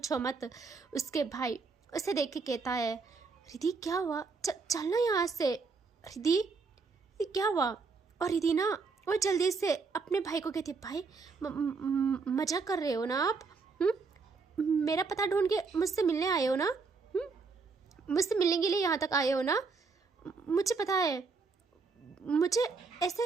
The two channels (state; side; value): quieter; left; 4.6 dB